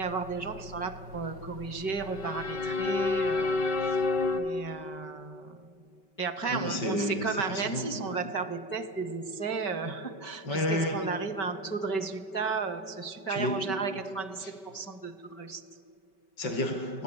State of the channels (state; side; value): late; right; 5.2 ms